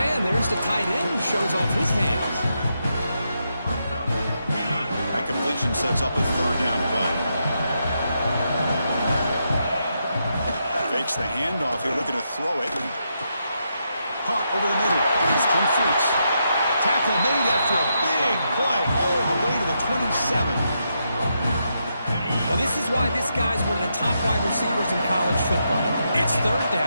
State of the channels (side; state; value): both; inverted; correlation -0.82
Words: And there's the tight end who shows off his hands. That completion sets up a 3rd down play. Fakes the handoff here, looking to throw it. Caught over the middle. It's Humphries. Tackle made after a big play all the way to the 27. Well, this is why this guy's one of the top wide receivers in college football. It's third